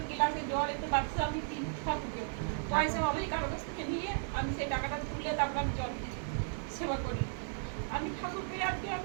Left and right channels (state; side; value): silent; left; digital silence